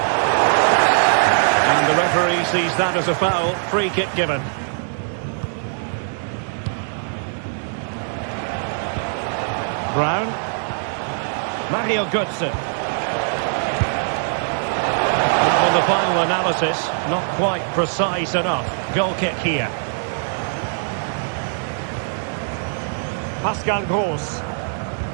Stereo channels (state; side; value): silent; left; digital silence